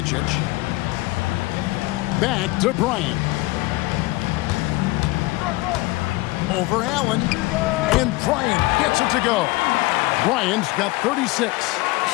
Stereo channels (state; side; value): quieter; right; 21.1 dB